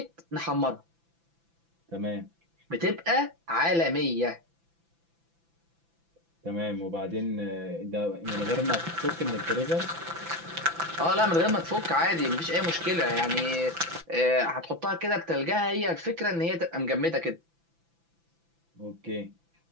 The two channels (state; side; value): late; left; 5.9 ms